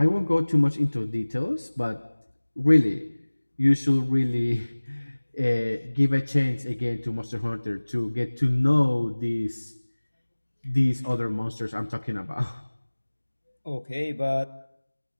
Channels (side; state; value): both; inverted; correlation -1.00